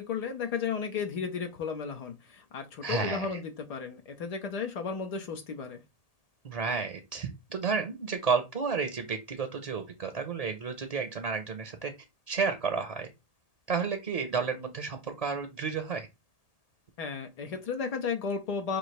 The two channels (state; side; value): late; right; 1.8 ms